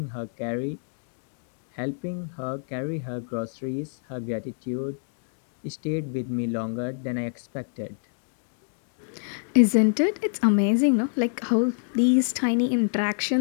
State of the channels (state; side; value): silent; right; digital silence